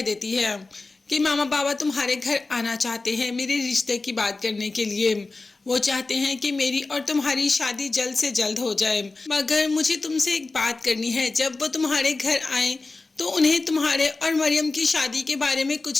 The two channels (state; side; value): quieter; right; 3.5 dB